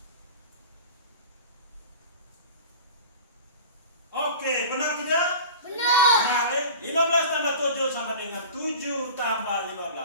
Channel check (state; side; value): inverted; both; correlation -0.37